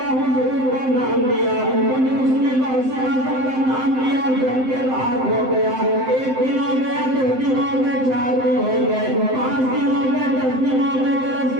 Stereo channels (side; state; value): left; late; 7.7 ms